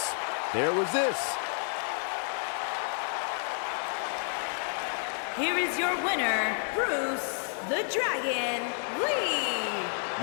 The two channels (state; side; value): silent; right; 58 dB below the other